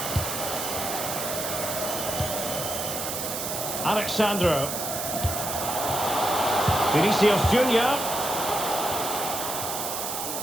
Alexandro. Vinicius Junior.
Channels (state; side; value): noise; right; hiss, 4 dB below the sound